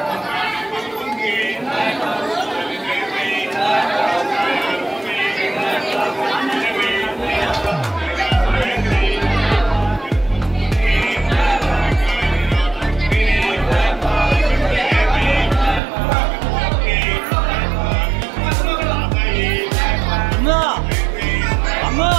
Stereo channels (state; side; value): drops out; left; at 15.8 s